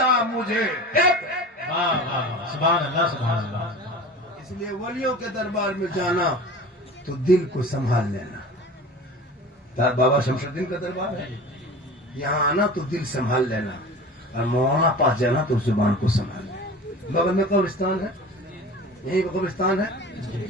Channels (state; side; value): normal; both; correlation 0.37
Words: मुझे सुभान अल्लाह, सुभान अल्लाह। इसलिए वलियों के दरबार में जाना तो दिल को संभाल लेना। बाबा शमशुद्दीन का दरबार है, यहाँ आना तो दिल संभाल लेना, और मौलाना पास जाना तो जुबान को संभाल लेना। बगल में कब्रिस्तान है, यही कब्रिस्तान है